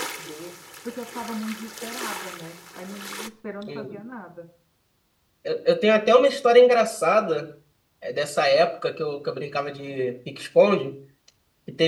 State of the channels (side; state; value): both; identical; correlation 1.00